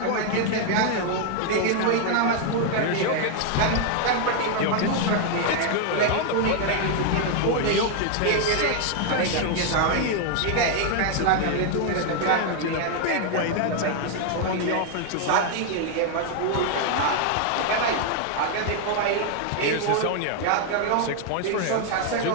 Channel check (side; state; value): both; different; correlation 0.00